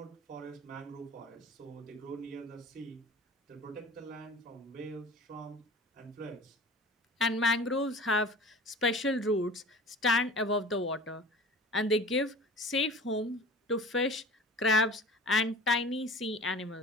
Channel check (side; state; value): both; normal; correlation 0.40